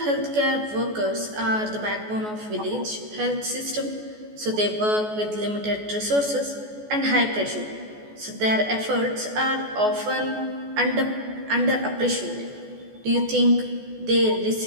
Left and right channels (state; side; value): late; left; 14 ms